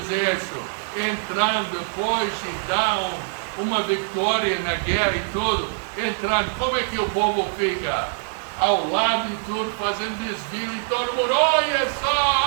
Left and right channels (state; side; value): silent; left; 63 dB below the other